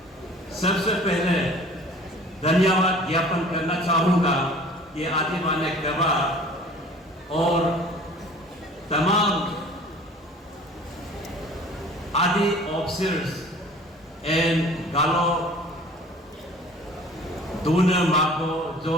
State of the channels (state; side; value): normal; both; correlation 0.47